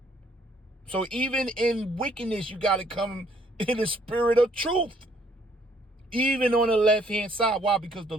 So even in wickedness, you got to come in the spirit of truth. Even on the left-hand side. Why? Because the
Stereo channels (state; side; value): normal; both; correlation 0.65